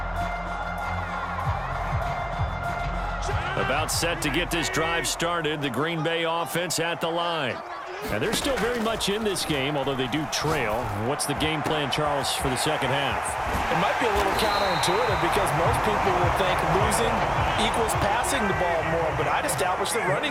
About set to get this drive started, the Green Bay offense at the line. And they're still very much in this game, although they do trail. What's the game plan, Charles, for the second half? It might be a little counterintuitive because most people will think losing equals passing the ball more, but I'd establish the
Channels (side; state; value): both; identical; correlation 1.00